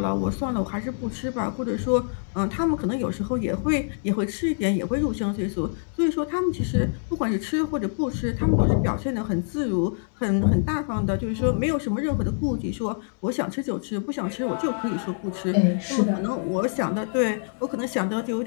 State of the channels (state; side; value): silent; right; digital silence